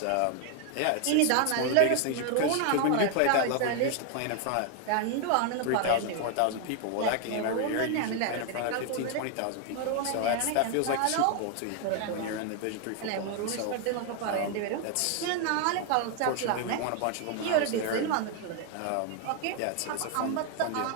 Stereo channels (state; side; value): different; both; correlation 0.00